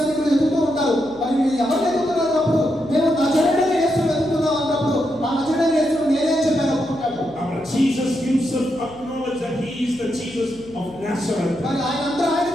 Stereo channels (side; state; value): left; noise; hum, 23 dB below the sound